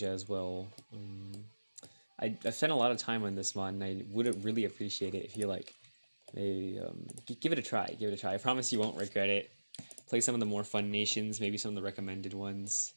as well. I've spent a lot of time on this mod, and I would really appreciate it if you like maybe give it a try. Give it a try. I promise you won't regret it. Play some of the more fun nations, maybe some of the recommended ones.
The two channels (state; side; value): inverted; both; correlation -1.00